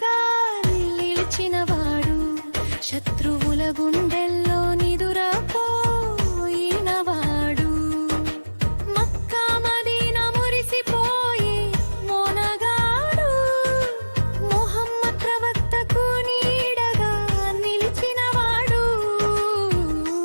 నిలిచినవాడు, శత్రువుల గుండెల్లో నిదురపోయినవాడు. మక్కా మదీనా మురిసిపోయి మోనగాడు, ముహమ్మద్ ప్రవక్తకు నీడగా నిలిచినవాడు.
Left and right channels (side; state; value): both; inverted; correlation -1.00